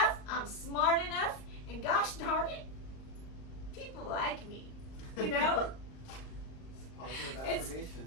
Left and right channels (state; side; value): late; right; 38 ms